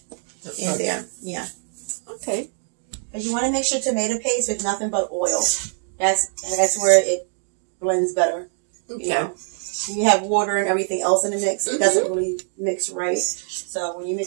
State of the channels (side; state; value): left; silent; digital silence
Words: in there. Yeah. Okay. But you want to make sure tomato paste with nothing but oil. That's where it blends better. Okay. You know? You have water and everything else in the mix. It doesn't really mix right. So when you